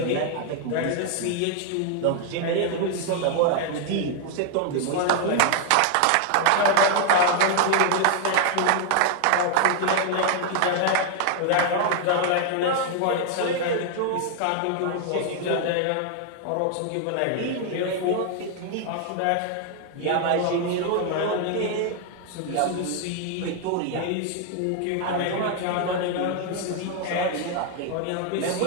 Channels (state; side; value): different; both; correlation 0.00